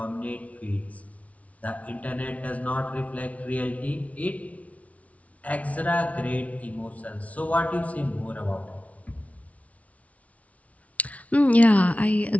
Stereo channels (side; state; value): right; late; 0.067 ms